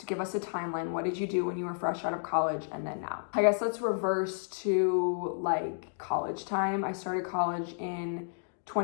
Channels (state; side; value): silent; right; digital silence